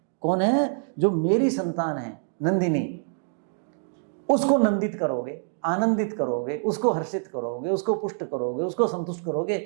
कौन है? जो मेरी संतान है नंदिनी, उसको नंदित करोगे, आनंदित करोगे, उसको हर्षित करोगे, उसको पुष्ट करोगे, उसको संतुष्ट करोगे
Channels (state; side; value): silent; left; 61 dB below the other